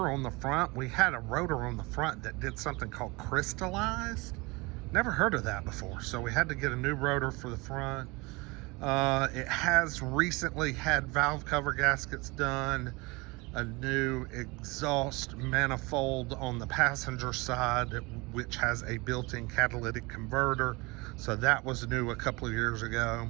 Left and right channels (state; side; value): quieter; left; 25.2 dB